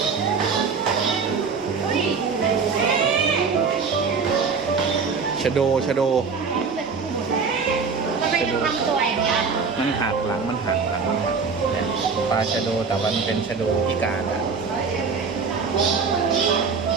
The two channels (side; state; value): left; quieter; 5.2 dB